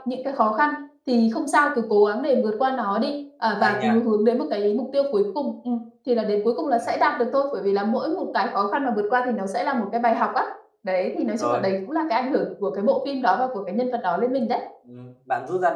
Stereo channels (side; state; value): both; identical; correlation 1.00